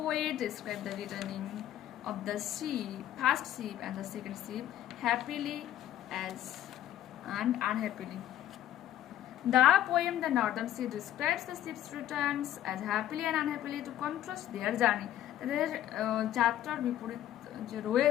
describe the returning of the first ship and the second ship happily and unhappily? The poem The Northern Sea describes the ship's returns as happily and unhappily to contrast their journey. তাদের যাত্রার বিপরীত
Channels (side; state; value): right; quieter; 12.2 dB